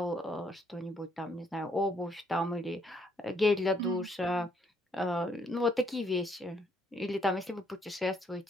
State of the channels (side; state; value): both; normal; correlation 0.70